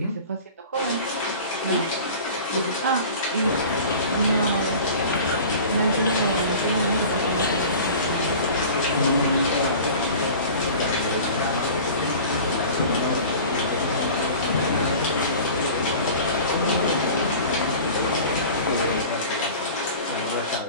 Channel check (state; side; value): inverted; both; correlation -0.40